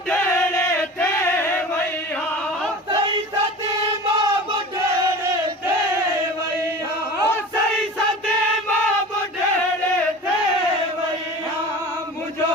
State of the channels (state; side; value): normal; both; correlation 0.36